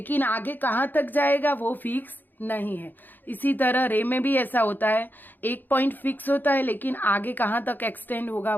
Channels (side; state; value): right; late; 0.089 ms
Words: आगे कहाँ तक जाएगा वो फिक्स नहीं है। इसी तरह रे में भी ऐसा होता है, एक पॉइंट फिक्स होता है लेकिन आगे कहाँ तक एक्सटेंड होगा